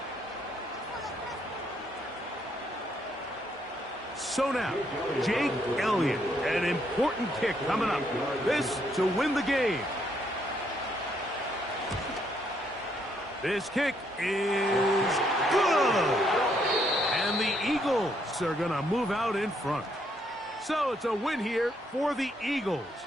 So now, Jake Elliott, an important kick coming up. This to win the game. This kick is good. And the Eagles are going to move out in front. So it's a win here for the Eagles.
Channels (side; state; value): both; normal; correlation 0.72